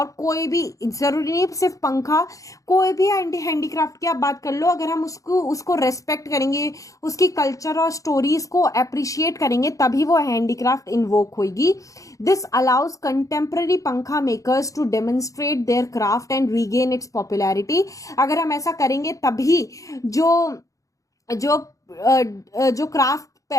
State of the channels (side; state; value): right; late; 0.16 ms